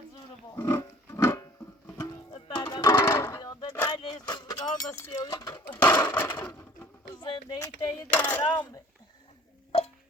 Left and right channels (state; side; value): normal; both; correlation 0.50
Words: زور برد ده بیاد ده نایلیش روزگار بسیاری زندگی تایی ده حرامه